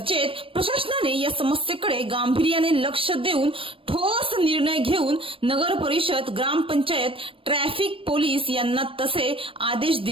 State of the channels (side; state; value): left; late; 0.26 ms